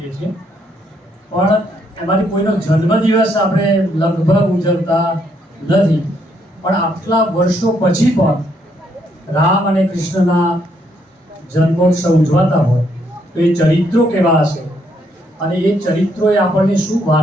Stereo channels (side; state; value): both; normal; correlation 0.73